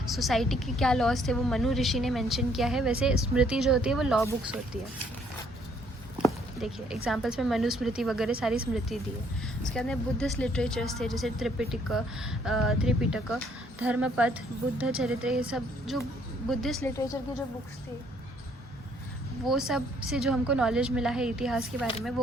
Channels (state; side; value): normal; both; correlation 0.65